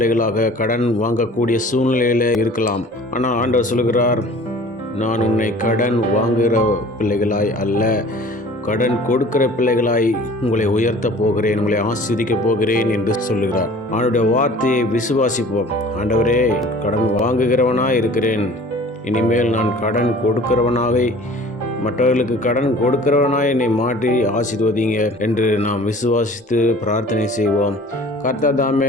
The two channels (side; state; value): both; normal; correlation 0.47